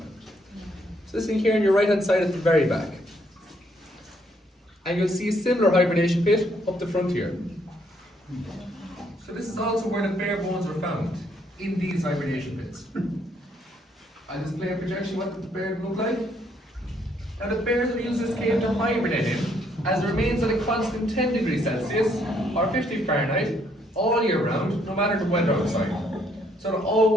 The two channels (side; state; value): both; normal; correlation 0.70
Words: So this thing here on your right hand side at the very back. And you'll see a similar hibernation pit up the front here. So this is also where the bear bones were found, in these hibernation pits. I'll display a projection what the bear look like. Now the bears have used this cave to hibernate in, as it remains at a constant 10 degrees Celsius, or 50 Fahrenheit, all year round, no matter the weather outside. So it'll